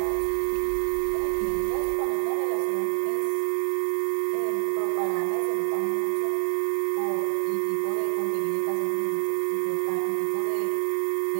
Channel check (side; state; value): left; silent; 61 dB below the other